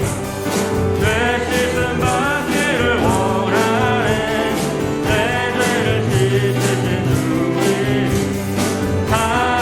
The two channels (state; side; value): identical; both; correlation 1.00